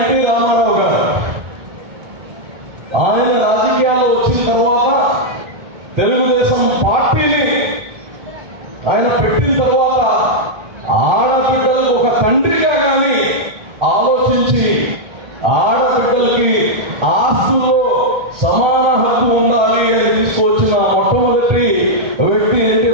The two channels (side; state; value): left; late; 1.3 ms